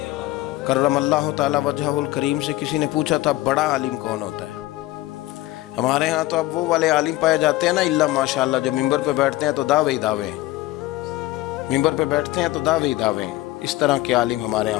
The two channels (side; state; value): right; quieter; 17.2 dB